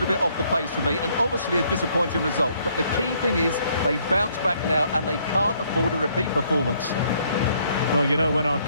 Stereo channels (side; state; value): both; inverted; correlation -0.67